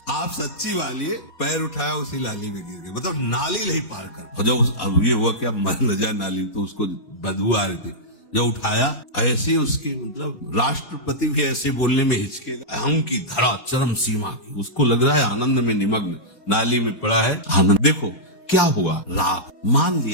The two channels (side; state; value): right; late; 4.2 ms